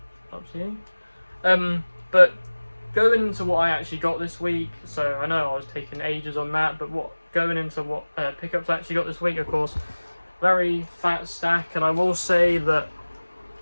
up to you. But going into what I actually got this week, so I know I was taking ages on that, but going into what pickups I actually got this week, of course, very fat stack, and I will say that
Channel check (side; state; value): both; inverted; correlation -1.00